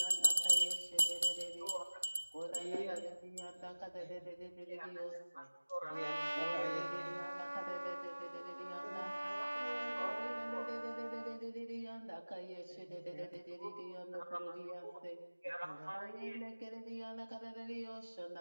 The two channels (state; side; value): inverted; both; correlation -1.00